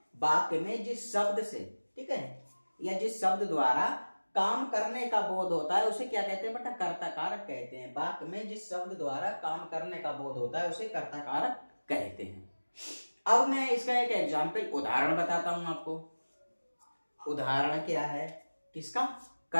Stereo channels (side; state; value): both; inverted; correlation -1.00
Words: में जिस शब्द से, ठीक है, या जिस शब्द द्वारा काम करने का बोध होता है उसे क्या कहते हैं बेटा, कर्ता कारक कहते हैं। वाक्य में जिस शब्द द्वारा काम करने का बोध होता है उसे कर्ता कारक कहते हैं। अब मैं इसका एक एग्जाम्पल, उदाहरण बताता हूं आपको। उदाहरण क्या है किसका,